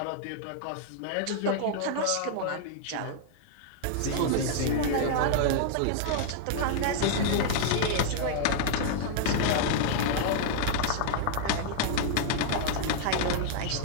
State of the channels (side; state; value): both; different; correlation -0.01